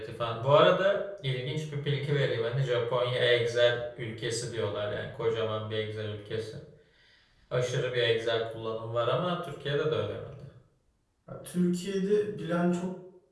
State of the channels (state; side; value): identical; both; correlation 1.00